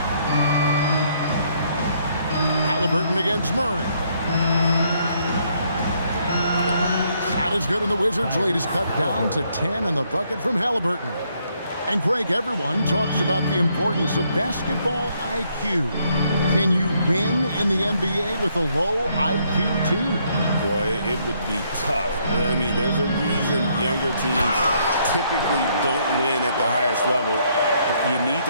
Halliburton against Murray. Shot is good, and the Wizards' lead is cut down to 10 on the bucket from Halliburton. And Greg, everyone talks about the importance of basketball IQ. Can you win in the NBA with a low IQ team? Boy, it would be tough. I mean, there's a reason younger teams typically don't win at the highest level. But you need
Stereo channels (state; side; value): inverted; both; correlation -0.71